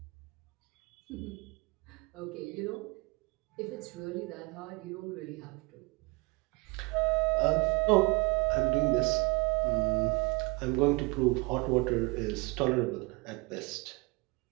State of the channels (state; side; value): quieter; left; 26.9 dB